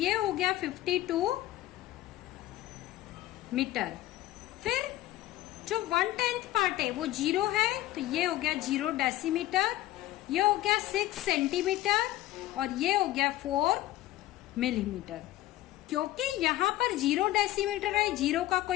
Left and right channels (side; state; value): right; quieter; 15.6 dB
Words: हो गया 52 मीटर। फिर जो 1/10 पार्ट है वो 0 है, तो ये हो गया 0 डेसीमीटर, ये हो गया 6 सेंटीमीटर, और ये हो गया 4 मिलीमीटर। क्योंकि यहाँ पर 0 डेसीमीटर है, 0 का